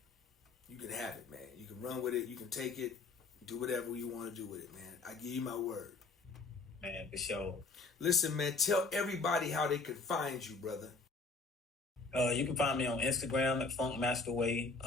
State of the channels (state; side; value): quieter; right; 3.8 dB